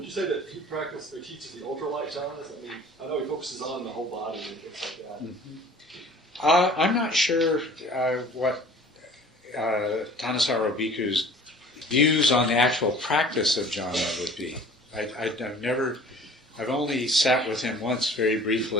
you say that he practices or teaches the ultralight jhanas? I mean, I know he focuses on the whole body and things like that. Mm-hmm. I'm not sure what Tanasara Bhikkhu's views on the actual practice of jhana would be. I've only sat with him once very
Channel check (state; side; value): normal; both; correlation 0.48